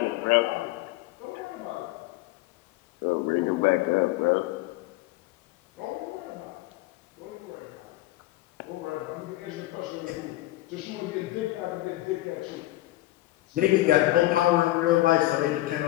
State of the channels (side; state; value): right; quieter; 16.9 dB